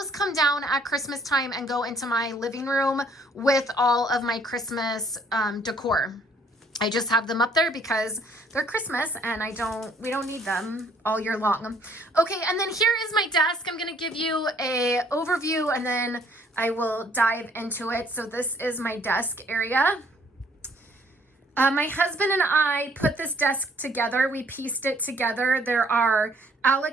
come down at Christmas time and go into my living room with all of my Christmas decor. I just have them up there because they're Christmas and we don't need them all year long. Okay, and then here is my desk. I'm gonna give you a overview and then I will dive into it. So this is my desk area. My husband and I put this desk together. We pieced it together. There are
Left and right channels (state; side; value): normal; both; correlation 0.61